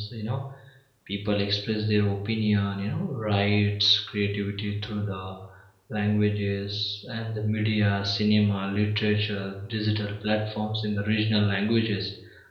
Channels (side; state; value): both; identical; correlation 1.00